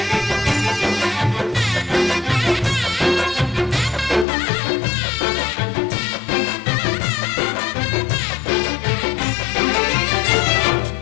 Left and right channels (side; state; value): right; drops out; at 4.2 s